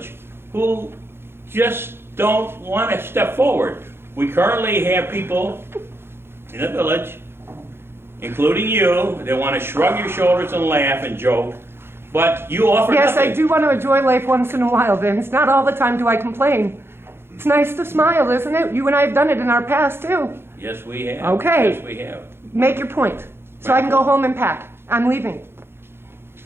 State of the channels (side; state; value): left; late; 0.11 ms